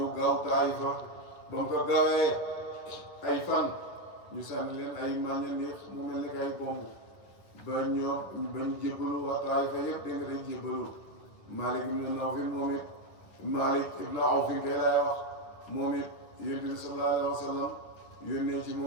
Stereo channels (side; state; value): right; late; 9.9 ms